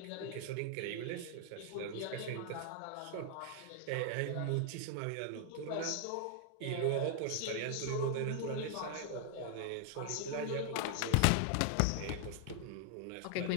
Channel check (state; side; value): different; both; correlation 0.00